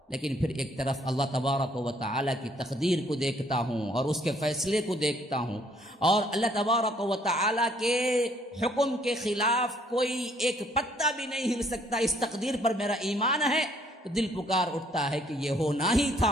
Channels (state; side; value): normal; both; correlation 0.64